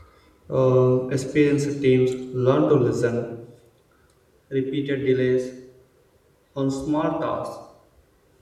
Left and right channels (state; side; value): identical; both; correlation 1.00